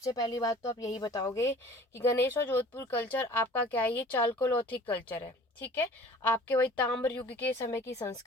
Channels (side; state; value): both; normal; correlation 0.47